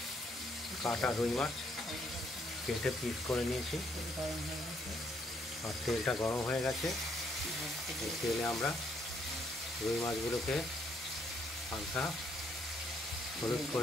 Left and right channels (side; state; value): both; normal; correlation 0.70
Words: কাটা রুই মাছ কেটে পিস করে নিয়েছি। আর তেলটা গরম হয়ে গেছে। এই তেলে আমরা রুই মাছগুলোকে হালকা হলুদ